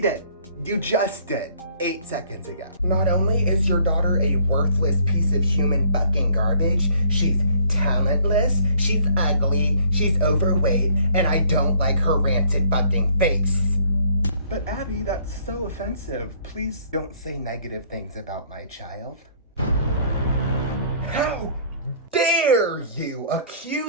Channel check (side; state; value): both; inverted; correlation -0.59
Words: You just did. 8 seconds ago. Not only is your daughter a worthless piece of human fucking garbage, she's talentless, she's ugly, she's overweight, and I don't like her rancid fucking face. But Abby, that's so offensive. Please don't say negative things about my child. How dare you